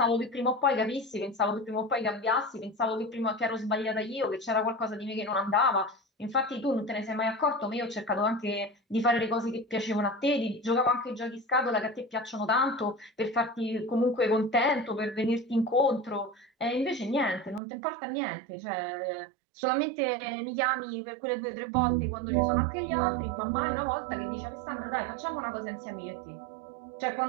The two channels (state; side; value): drops out; left; at 17.6 s